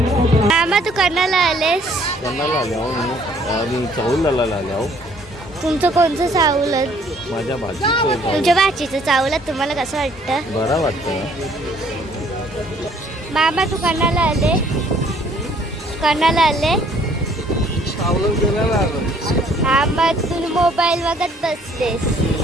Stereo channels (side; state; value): both; normal; correlation 0.60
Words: मामा तू कर्नाला आलेस? आणि चावलाला आल्या. तुमचं कोणतं चावलं? माझ्या भाजीचं तुमच्या भाचीचं चावलं. तुम्हाला कसं वाटतं? बरं वाटतं. मामा तू कर्नाला आले? कर्नाला आले? हा मग तुम्ही मोबाईल बघत बसलेस.